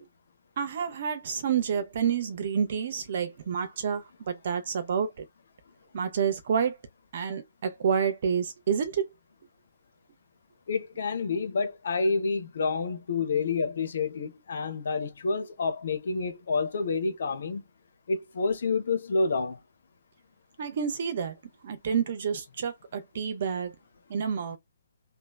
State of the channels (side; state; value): both; inverted; correlation -0.67